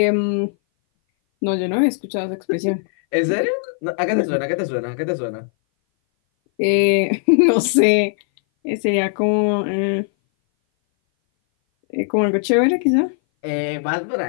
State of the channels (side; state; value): right; silent; 59 dB below the other